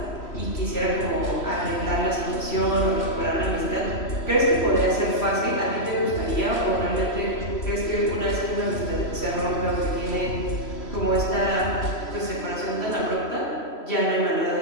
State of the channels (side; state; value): right; late; 3.0 ms